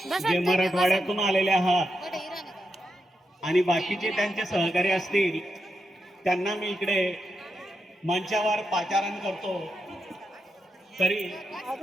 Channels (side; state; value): both; normal; correlation 0.85